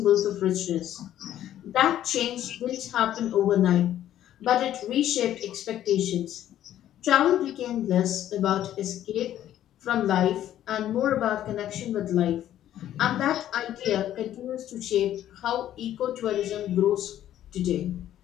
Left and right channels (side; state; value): right; quieter; 11.9 dB